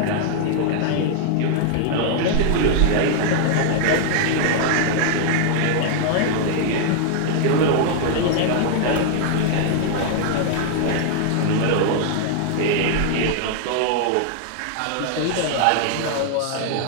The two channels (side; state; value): both; different; correlation 0.00